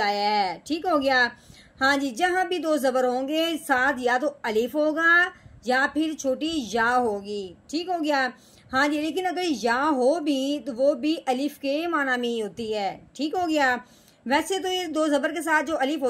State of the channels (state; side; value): identical; both; correlation 1.00